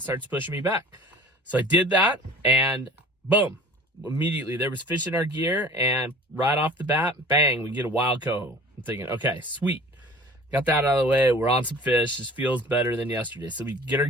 starts pushing me back. So I did that, and boom. Immediately there was fish in our gear, and right off the bat, bang, we get a wild coho. I'm thinking, okay, sweet, got that out of the way. We're on some fish. This feels better than yesterday. So we get our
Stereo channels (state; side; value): normal; both; correlation 0.46